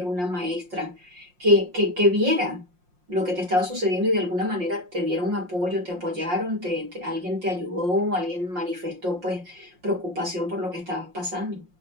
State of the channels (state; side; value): late; left; 5.6 ms